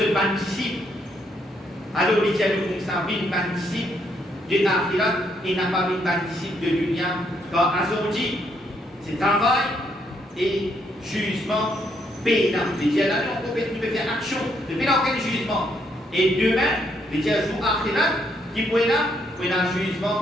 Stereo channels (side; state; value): both; normal; correlation 0.73